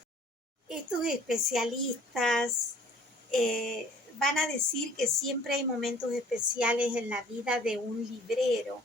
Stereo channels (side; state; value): both; normal; correlation 0.53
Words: Estos especialistas van a decir que siempre hay momentos especiales en la vida de un librero